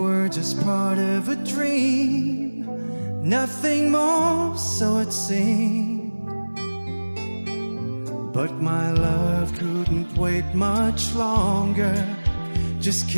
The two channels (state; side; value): inverted; both; correlation -1.00